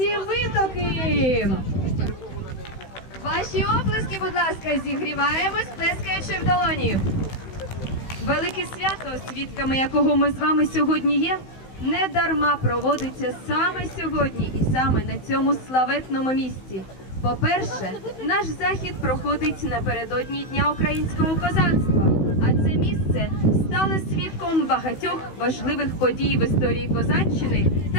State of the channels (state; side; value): late; right; 16 ms